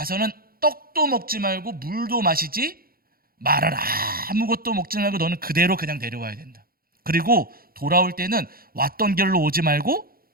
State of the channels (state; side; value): late; left; 0.43 ms